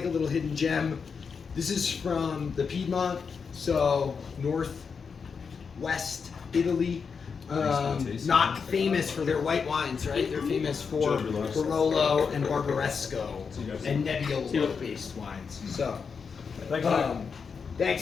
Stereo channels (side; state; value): right; quieter; 5.8 dB